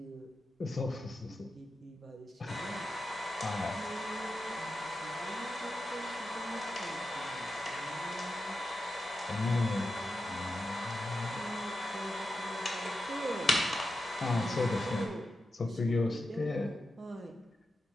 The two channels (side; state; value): both; normal; correlation 0.90